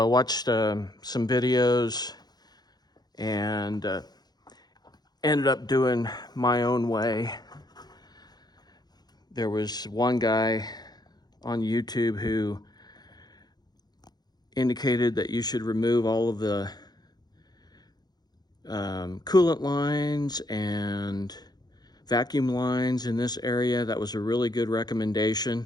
watched some videos and ended up doing my own way. There was one guy on YouTube who indicated that you should remove all of the coolant lines and vacuum lines in this area. That was a really good recommendation,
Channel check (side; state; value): right; late; 0.20 ms